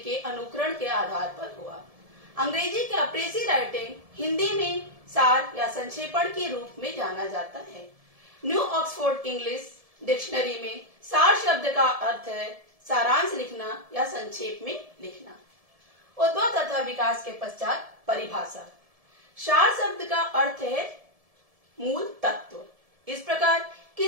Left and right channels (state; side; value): late; left; 1.7 ms